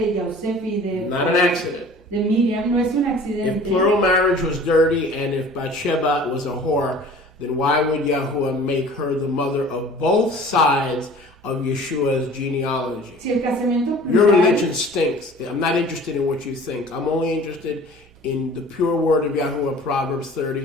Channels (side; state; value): right; noise; hum, 28 dB below the sound